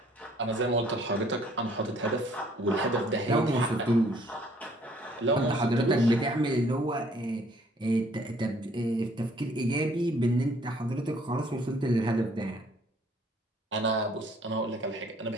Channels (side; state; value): both; normal; correlation 0.61